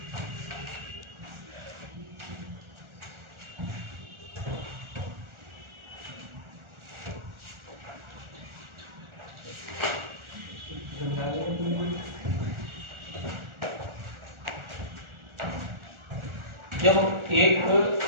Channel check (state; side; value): late; left; 1.4 ms